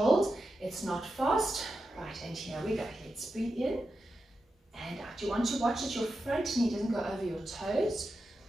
It's not fast. Right, and here we go. Let's breathe in and out. You want to watch that your front knee doesn't go over your toes.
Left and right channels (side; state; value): both; normal; correlation 0.89